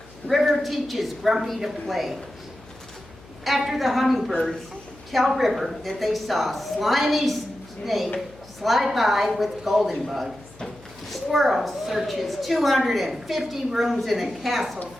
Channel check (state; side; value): noise; left; hum, 23 dB below the sound